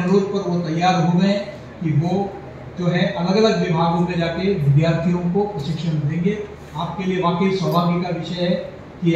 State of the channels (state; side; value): identical; both; correlation 1.00